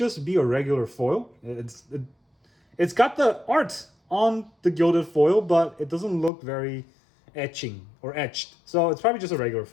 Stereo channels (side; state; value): right; drops out; at 6.3 s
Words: be a regular foil. It's got the art on the gilded foil, but it doesn't look very etched. So it's probably just a regular